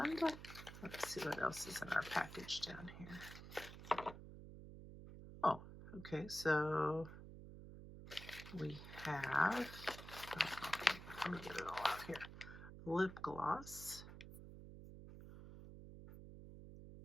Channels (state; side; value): noise; right; hum, 13 dB below the sound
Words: let's see what else is in our package down here. Oh, okay, so we have, let me get it all out here. Lip gloss.